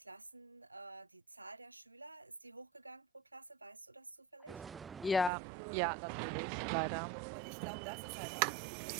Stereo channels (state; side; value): drops out; left; at 5.3 s